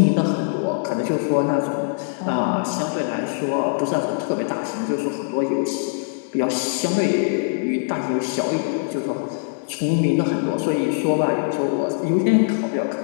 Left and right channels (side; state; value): right; silent; 64 dB below the other